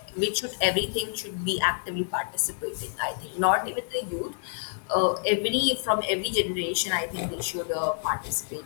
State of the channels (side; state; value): right; silent; 59 dB below the other